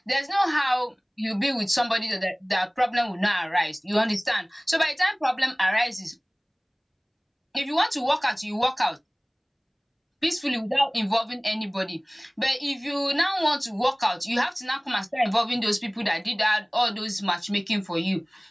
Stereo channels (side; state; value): both; identical; correlation 1.00